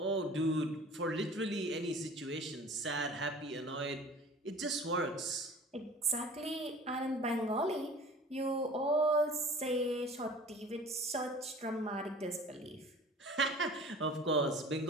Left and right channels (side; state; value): both; normal; correlation 0.44